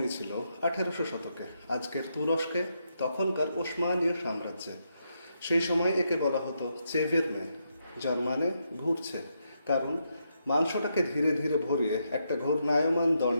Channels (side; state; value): both; inverted; correlation -0.81